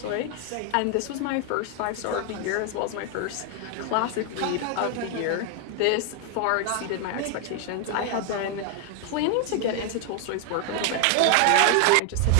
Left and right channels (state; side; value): different; both; correlation 0.00